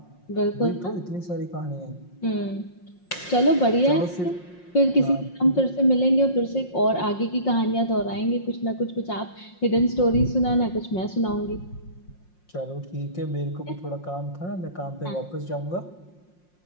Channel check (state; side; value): late; right; 5.6 ms